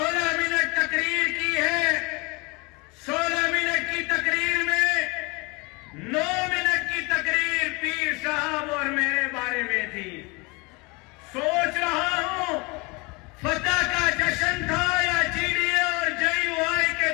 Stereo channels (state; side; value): quieter; right; 27.2 dB